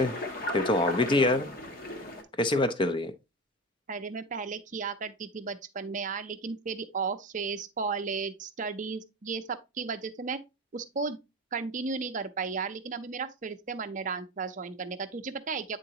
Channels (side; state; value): both; normal; correlation 0.27